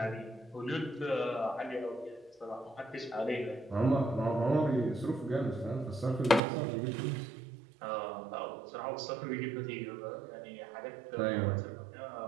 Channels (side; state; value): left; drops out; at 6.4 s